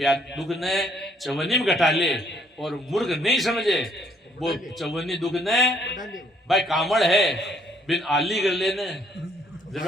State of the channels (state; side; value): normal; both; correlation 0.65